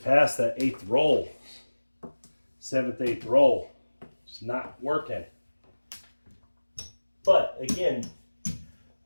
past that 8th roll. 7th, 8th roll. It's not working. But again,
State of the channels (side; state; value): both; inverted; correlation -1.00